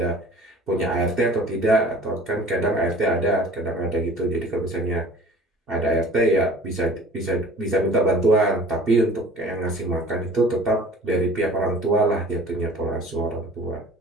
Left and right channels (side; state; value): both; normal; correlation 0.46